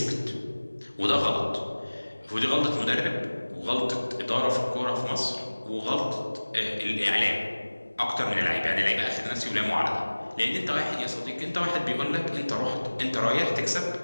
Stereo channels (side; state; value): both; inverted; correlation -1.00